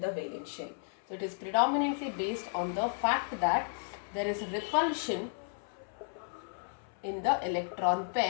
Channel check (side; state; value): right; silent; 55 dB below the other